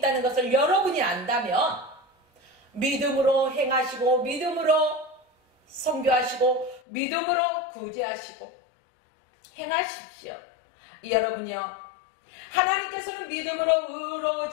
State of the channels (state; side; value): drops out; right; at 6.8 s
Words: 것을 여러분이 안다면 믿음으로 행하시고 믿음으로 선교하시고 믿음으로 구제하시고 행하십시오. 여러분이요, 하나님께서는 믿음으로